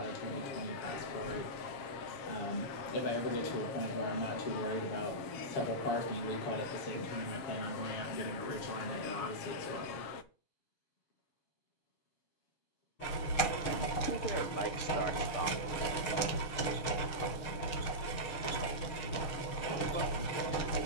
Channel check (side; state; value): right; late; 6.6 ms